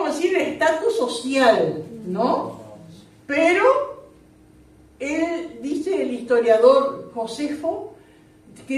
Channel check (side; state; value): both; identical; correlation 1.00